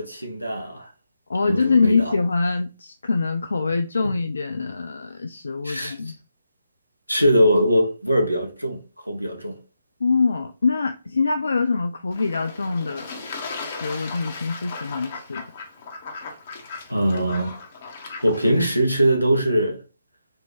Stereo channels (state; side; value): inverted; both; correlation -0.86